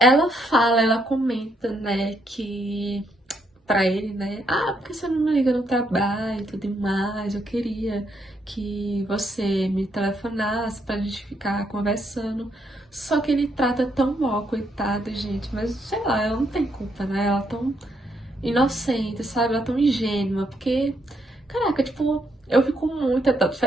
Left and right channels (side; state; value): both; normal; correlation 0.75